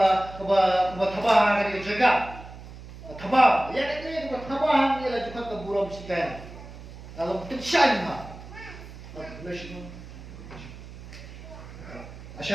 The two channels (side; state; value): right; noise; hum, 15 dB below the sound